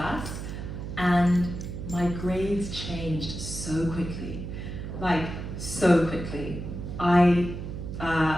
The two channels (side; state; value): right; noise; hum, 7 dB below the sound